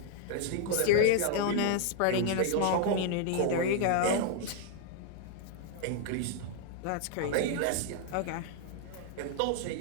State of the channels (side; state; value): both; different; correlation -0.01